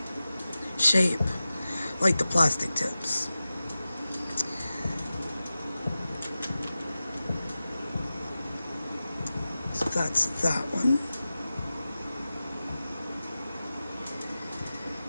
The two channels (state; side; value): inverted; both; correlation -0.95